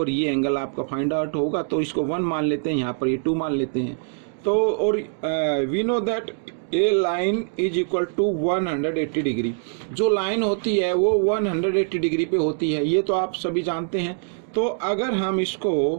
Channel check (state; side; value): silent; left; digital silence